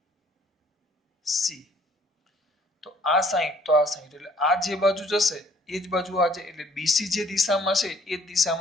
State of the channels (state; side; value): normal; both; correlation 0.59